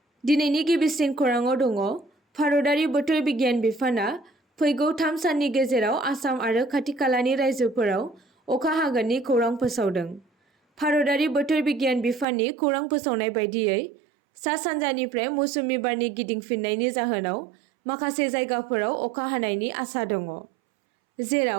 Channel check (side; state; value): left; drops out; at 12.2 s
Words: दिनैनि गिबिसिन खौराङाव दङ भारतारि बोथोर बिगियान बिफाना फैगौ 3 साननि गेजेराव आसाम आरो खाथि-खालानि रायजोफोराव अखा हागोननि खौरां फोसावदों। भारतारि बोथोर बिगियान बिफाननि खौरां फोसावनाय बायदियै सा-सानजानिफ्राय मौसुमि बारनि गिदिंफिननायनि जाहोनाव माखासे जायगाफोराव अखा हानायनि आसा दङ,